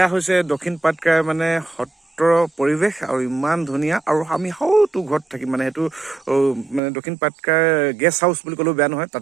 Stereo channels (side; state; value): left; drops out; at 6.8 s